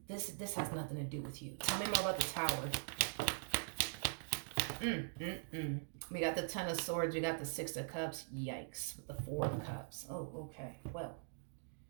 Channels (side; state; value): left; silent; digital silence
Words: This has nothing to do with you. Tell me more about the Tower. We got the Ten of Swords. We got the Six of Cups. Yikes. With the Four of Cups. Oh, okay. Well.